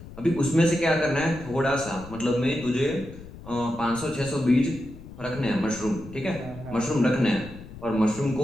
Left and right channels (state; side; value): noise; left; rumble, 15 dB below the sound